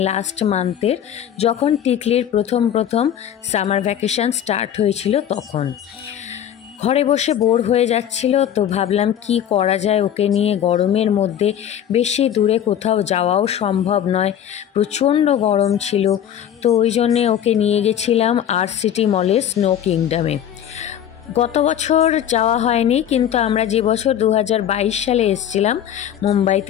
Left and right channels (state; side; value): quieter; right; 10.0 dB